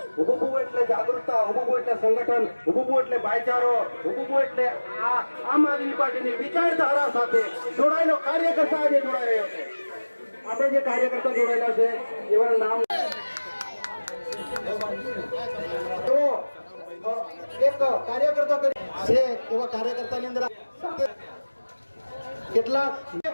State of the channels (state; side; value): inverted; both; correlation -1.00